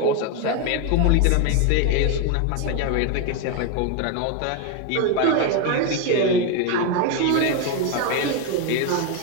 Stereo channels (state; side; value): different; both; correlation 0.02